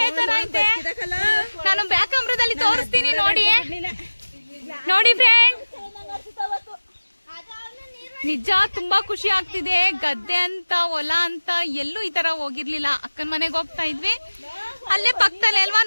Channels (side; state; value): both; inverted; correlation -1.00